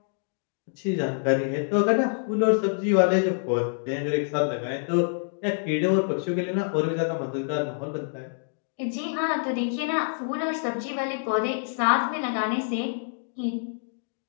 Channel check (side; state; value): right; silent; digital silence